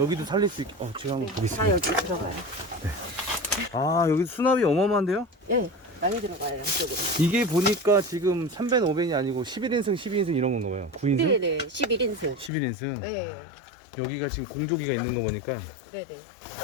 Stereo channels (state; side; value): drops out; right; at 12.5 s